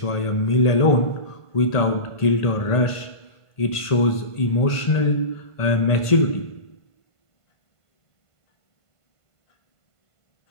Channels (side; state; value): right; late; 1.5 ms